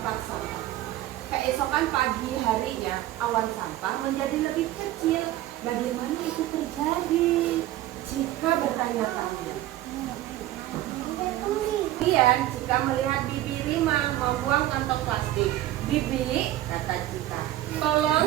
sampah. Keesokan pagi harinya, awan sampah menjadi lebih kecil. Bagaimana itu terjadi? Cika bertanya-tanya. Kemudian Cika melihat Bibi Rimang membuang kantong plastik. Bibi, kata Cika,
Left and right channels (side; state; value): left; quieter; 14.6 dB